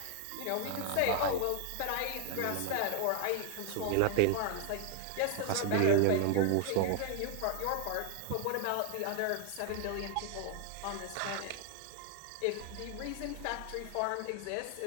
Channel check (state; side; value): different; both; correlation 0.00